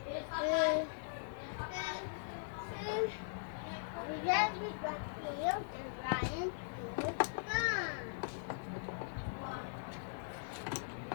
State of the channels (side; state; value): right; silent; digital silence